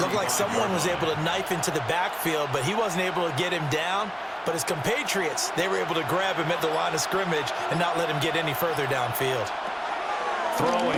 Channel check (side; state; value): both; identical; correlation 1.00